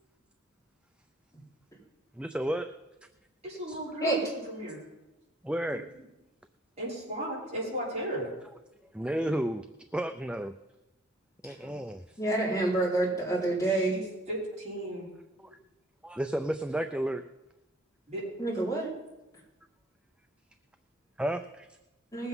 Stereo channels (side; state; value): both; normal; correlation 0.59